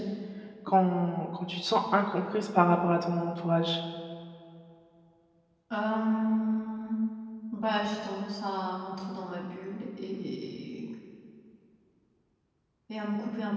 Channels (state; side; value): identical; both; correlation 1.00